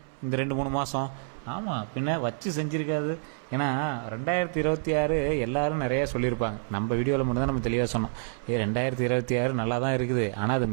இந்த 2-3 மாதம். ஆமாம், பின்ன வச்சு செஞ்சுருக்காது. ஏன்னா 2026 எல்லாரும் நிறையா சொல்லியிருப்பாங்க. நம்ம வீடியோவில் மட்டும் தான் நம்ம தெளிவாக சொன்னோம். 2026 நல்லா தான் இருக்குது. ஆனால் அது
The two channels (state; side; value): silent; left; 59 dB below the other